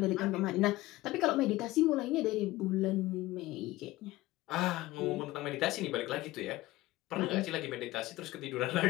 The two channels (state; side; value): quieter; right; 18.0 dB